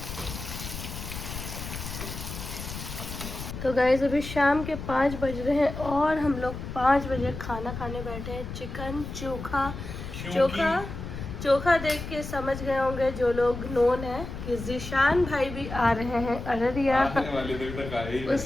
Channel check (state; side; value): noise; left; rumble, 8 dB below the sound